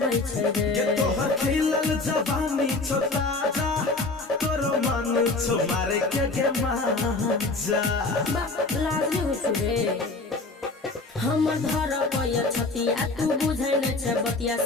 छै रे ये तोहर खिलल जवानी छो ताजा तोरो मन छो मारे के मजा लाजमी हो छु रे हमर घर पय छतिया तू बुझै नै छै बतिया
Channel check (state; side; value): quieter; right; 3.4 dB